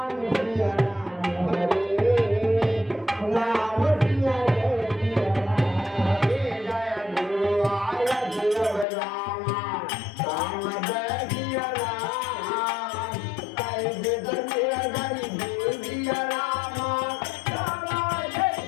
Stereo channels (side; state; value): right; drops out; at 8.8 s